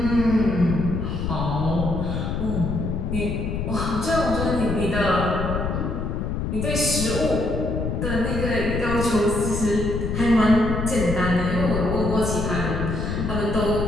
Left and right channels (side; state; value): left; noise; rumble, 2 dB below the sound